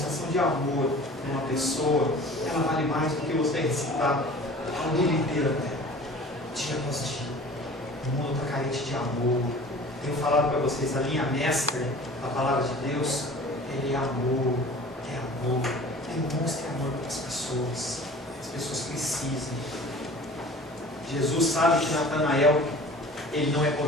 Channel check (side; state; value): both; normal; correlation 0.43